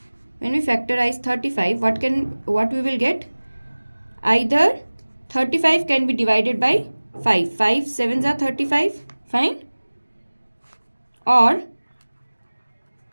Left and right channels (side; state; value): both; inverted; correlation -1.00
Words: what we will get? Either 35 can be divided by 5. 5 sevens are 35. Fine. Or